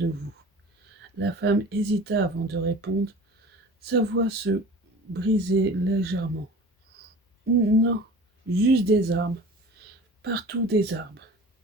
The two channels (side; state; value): both; normal; correlation 0.40